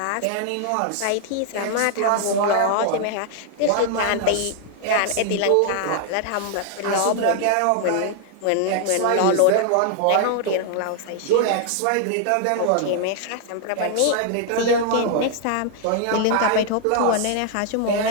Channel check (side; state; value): both; different; correlation 0.00